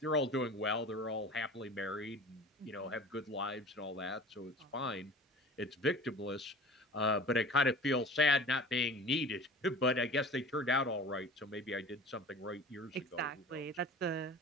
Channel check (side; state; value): both; normal; correlation 0.40